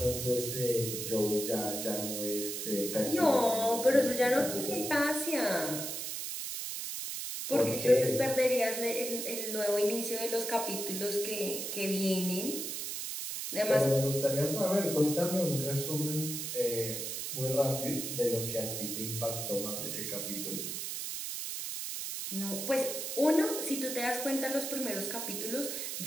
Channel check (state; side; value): noise; right; hiss, 4 dB below the sound